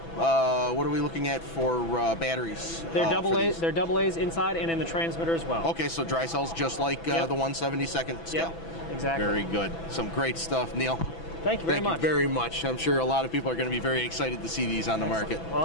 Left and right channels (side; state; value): right; late; 6.0 ms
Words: What are we looking at for batteries? They're double A's. They're double A's inside and in the transmitter as well. Okay, so dry cells just like the 1/72nd scale. Yep, exactly. Very good. Some great stuff, Neil. Thank you very much. Thank you very much. I'm sure a lot of people are going to be very excited to see these on the market. Well,